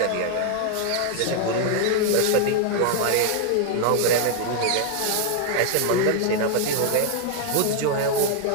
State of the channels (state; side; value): different; both; correlation 0.00